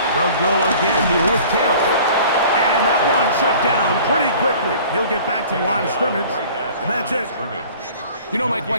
They'll go again here with Taylor. And that one shut down pretty quickly. He'll get back to the line of scrimmage, and that's it. You know, Mike,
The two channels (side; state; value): both; inverted; correlation -0.47